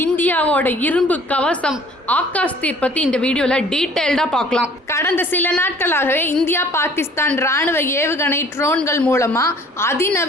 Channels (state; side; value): normal; both; correlation 0.53